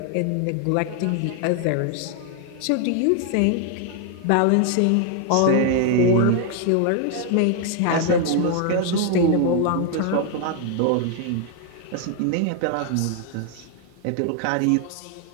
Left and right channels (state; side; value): different; both; correlation 0.00